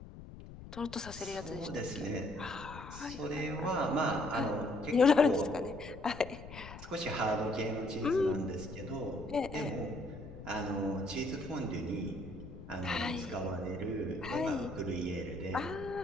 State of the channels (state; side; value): noise; left; rumble, 13 dB below the sound